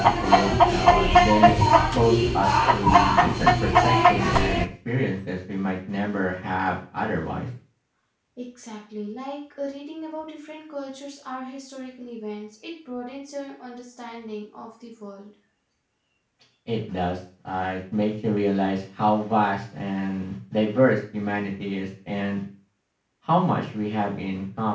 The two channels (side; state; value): both; identical; correlation 1.00